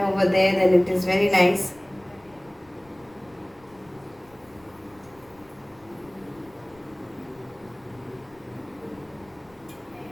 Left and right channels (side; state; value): left; noise; rumble, 28 dB below the sound